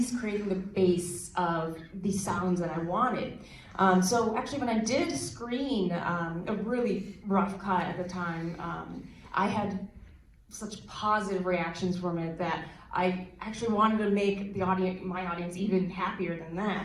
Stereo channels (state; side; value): identical; both; correlation 1.00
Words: creating the base of the sounds that I wanted. So actually, when I did screen a really rough cut at the time, I had such positive reactions from it that I actually wanted to make my audience even happier than